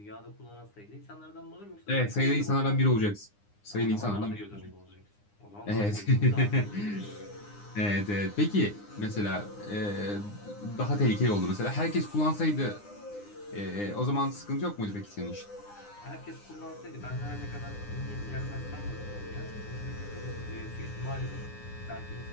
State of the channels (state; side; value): late; right; 9.8 ms